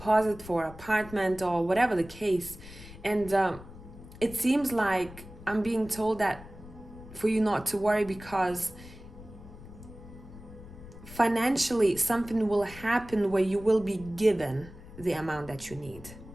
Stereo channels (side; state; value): left; noise; rumble, 17 dB below the sound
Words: for an apartment, or whatever the case. And it seems like I'm being told that for you not to worry, because financially something will happen where you will be given the amount that you need